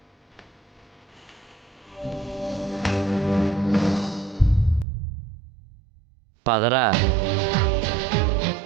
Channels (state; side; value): drops out; left; at 4.9 s